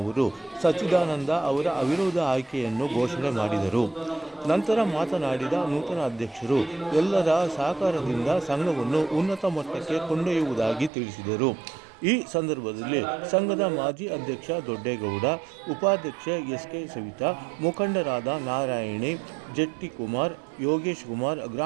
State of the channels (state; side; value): drops out; left; at 10.9 s